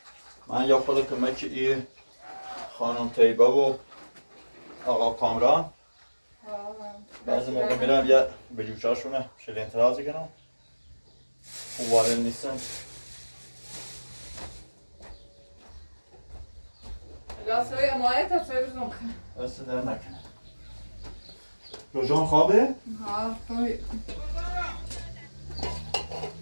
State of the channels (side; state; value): both; inverted; correlation -1.00